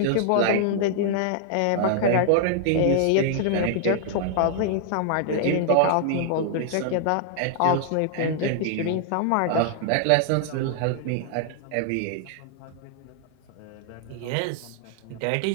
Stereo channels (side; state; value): both; different; correlation -0.01